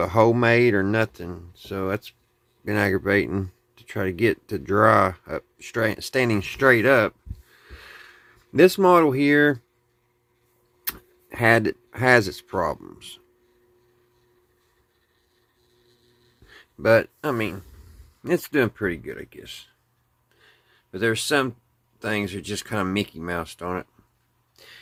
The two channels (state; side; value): identical; both; correlation 1.00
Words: hole made or nothing, so that's been aggravating to try to get to dry up straight, standing straight up. This model here has its problems, but I mean, it's doing pretty good, I guess. But there's some things that are just kind of Mickey Moused on it.